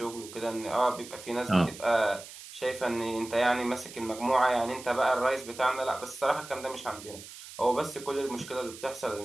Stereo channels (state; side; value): noise; right; hiss, 15 dB below the sound